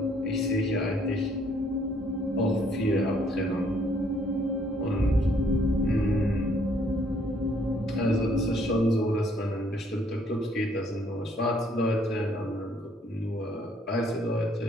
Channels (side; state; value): both; normal; correlation 0.65